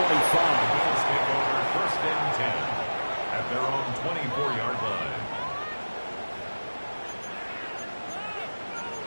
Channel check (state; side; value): inverted; both; correlation -1.00